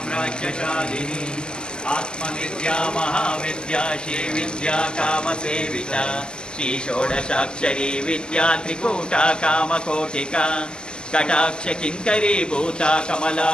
आत्मविद्या महाविद्या श्रीविद्या कामसेविता श्रीषोडशाक्षरी विद्या त्रिकूटा कामकोटिका कटाक्षकिङ्करी भूता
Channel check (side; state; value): right; late; 0.047 ms